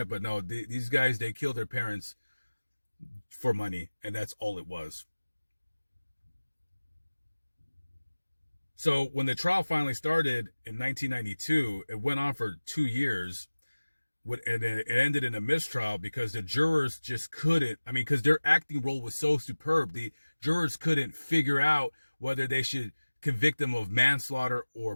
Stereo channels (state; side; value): inverted; both; correlation -1.00